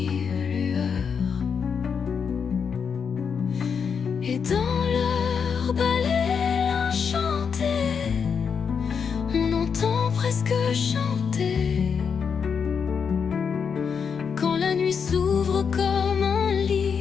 lueurs. Et dans leur balai enchanté, on entend presque chanter. Quand la nuit s'ouvre comme un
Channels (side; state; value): right; quieter; 6.4 dB